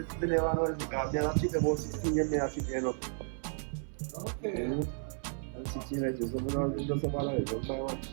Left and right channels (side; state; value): left; silent; 56 dB below the other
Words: never know this because I keep about 16 years, I keep you know. Okay. I'm 16 years, so I don't just about it. Don't buy one to you